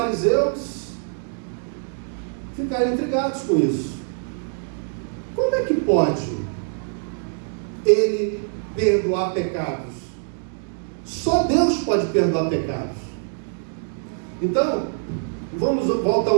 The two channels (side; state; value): left; silent; digital silence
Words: ficaram intrigados com isso. Como é que pode ele perdoar pecados? Só Deus pode perdoar pecados. Então, vamos voltar